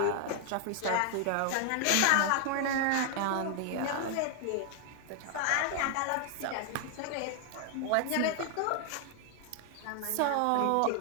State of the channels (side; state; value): both; different; correlation 0.00